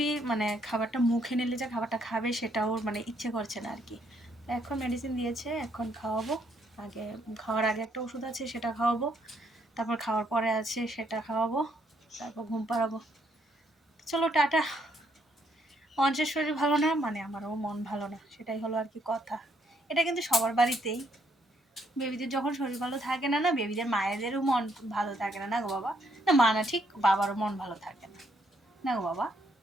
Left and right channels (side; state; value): both; normal; correlation 0.72